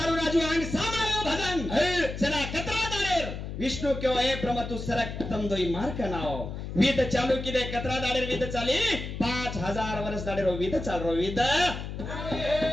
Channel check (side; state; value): left; noise; hum, 7 dB below the sound